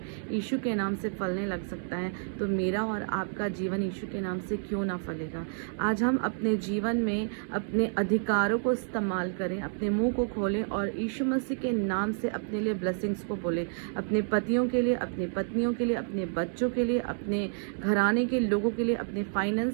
यीशु के नाम से फलने लग सकता है तो मेरा और आपका जीवन यीशु के नाम से क्यों ना फलेगा। आज हम अपने जीवन में अपने अधिकारों को इस्तेमाल करें, अपने मुंह को खोलें और यीशु मसीह के नाम से अपने लिए ब्लेसिंग्स को बोलें। अपने पतियों के लिए, अपनी पत्नियों के लिए, अपने बच्चों के लिए, अपने घराने के लोगों के लिए, अपने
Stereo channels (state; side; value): silent; left; digital silence